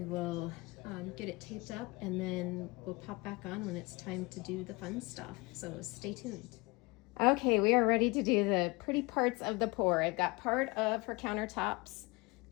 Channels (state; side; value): quieter; right; 25.7 dB